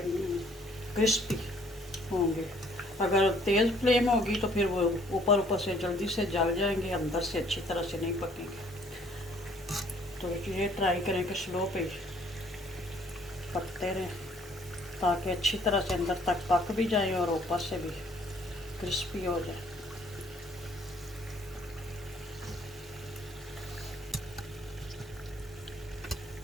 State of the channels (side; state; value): both; normal; correlation 0.61